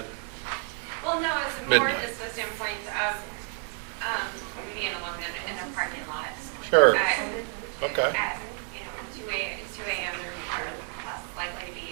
Well, no, it's more Midnight. just the standpoint of being alone in a parking lot. Sure. At, Okay. At 2 a.m. there are less likely to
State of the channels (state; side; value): quieter; left; 36.8 dB